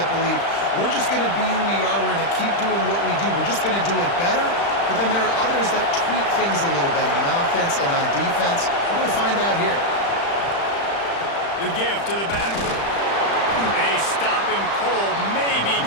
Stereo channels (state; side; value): late; right; 35 ms